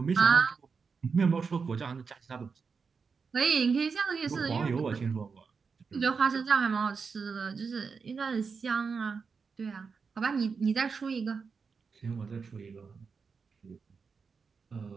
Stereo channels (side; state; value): left; quieter; 5.3 dB